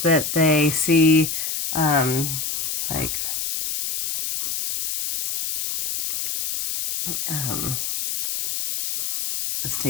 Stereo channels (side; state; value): left; noise; hiss, 3 dB below the sound